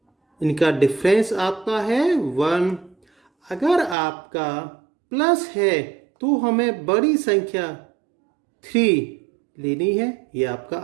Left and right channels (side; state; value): left; drops out; at 4.0 s